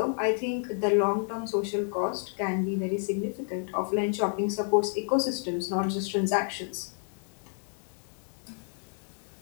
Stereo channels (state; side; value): silent; right; 58 dB below the other